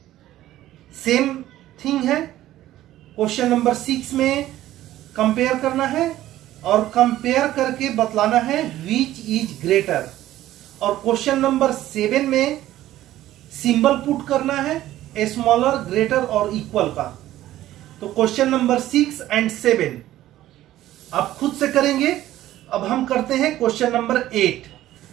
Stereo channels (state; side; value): quieter; left; 14.2 dB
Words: same thing है। क्वेश्चन नंबर 6 में कंपेयर करना है और कंपेयर करके बतलाना है विच इज ग्रेटर, और क्वेश्चन नंबर 7 में सिंबल पुट करना है स्मॉलर, ग्रेटर और इक्वल का। तो क्वेश्चन नंबर 6 एंड 7 आप खुद से करेंगे। अब हम करते हैं question number 8।